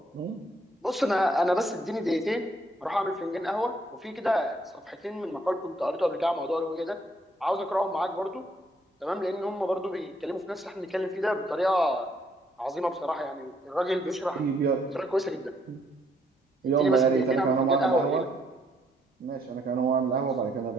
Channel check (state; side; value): normal; both; correlation 0.69